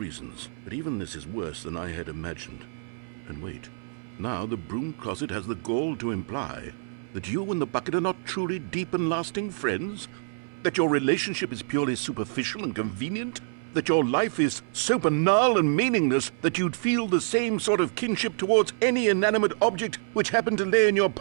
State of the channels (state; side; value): silent; left; 60 dB below the other